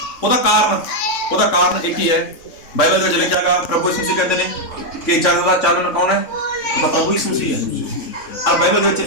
ਉਹਦਾ ਕਾਰਨ ਇੱਕ ਹੀ ਹੈ। ਬਾਈਬਲ ਵਿੱਚ ਲਿਖਿਆਗਾ, ਪ੍ਰਭੂ ਯਿਸੂ ਮਸੀਹ ਕਹਿੰਦੇ ਨੇ ਕਿ ਜਗਤ ਦਾ ਚਾਨਣ ਕੌਣ ਹੈ? ਉਹ ਤਾਂ ਪ੍ਰਭੂ ਯਿਸੂ ਮਸੀਹ ਹੈ। ਔਰ ਬਾਈਬਲ ਵਿੱਚ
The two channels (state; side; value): late; right; 3.6 ms